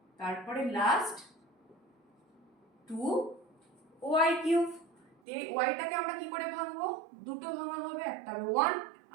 তারপরে লাস্ট 2y কিউব। এই ওয়াইটাকে আমরা কি করে ভাঙবো? দুটো ভাঙা হবে, একটা হবে 1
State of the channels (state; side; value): drops out; left; at 5.2 s